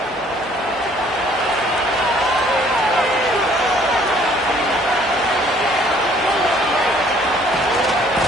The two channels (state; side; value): normal; both; correlation 0.59